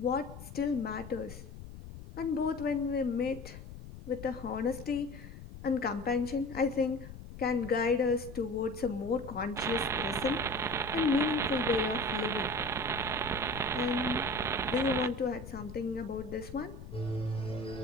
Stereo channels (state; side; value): noise; left; rumble, 13 dB below the sound